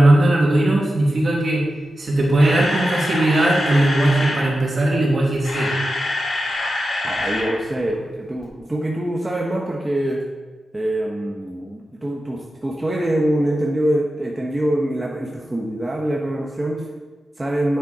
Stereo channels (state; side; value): normal; both; correlation 0.92